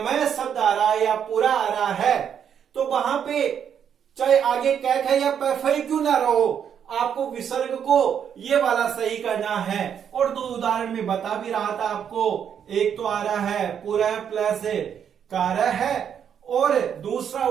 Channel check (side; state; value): left; quieter; 8.3 dB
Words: शब्द आ रहा है या पूरा आ रहा है, तो वहां पे चाहे आगे कैक है या पैफई क्यों ना रहो, आपको विसर्ग को ये वाला सही करना है। और 2 उदाहरण में बता भी रहा था आपको, एक तो आ रहा है पुरः प्लस कार्य है, और दूसरा